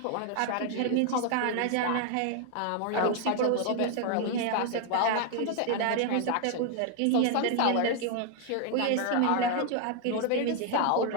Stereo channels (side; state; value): both; different; correlation 0.00